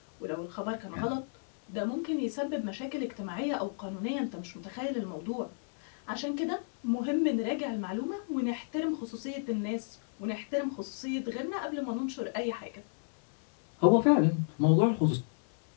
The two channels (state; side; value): silent; right; 56 dB below the other